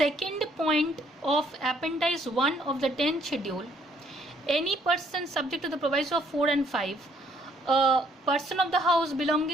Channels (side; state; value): both; normal; correlation 0.65